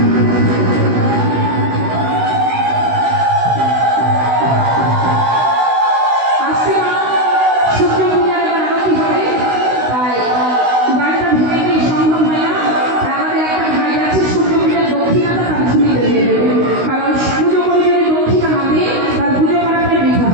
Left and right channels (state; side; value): late; left; 16 ms